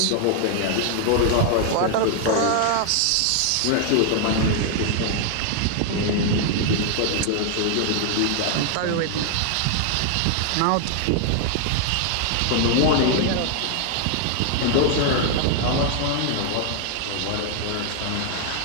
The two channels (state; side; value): different; both; correlation 0.00